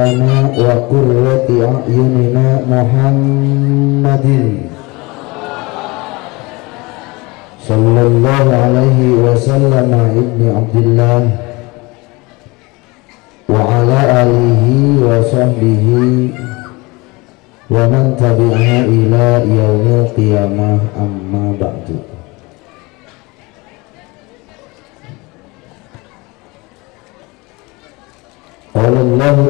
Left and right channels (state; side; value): quieter; right; 24.5 dB